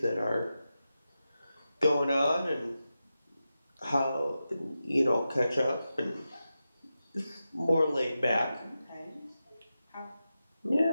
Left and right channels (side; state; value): both; inverted; correlation -0.91